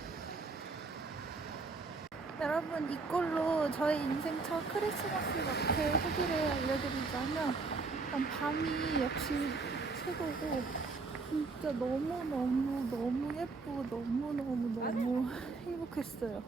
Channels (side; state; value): left; quieter; 4.1 dB